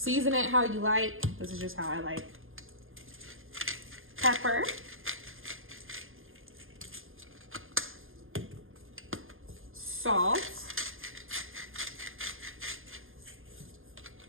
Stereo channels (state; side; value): late; left; 0.59 ms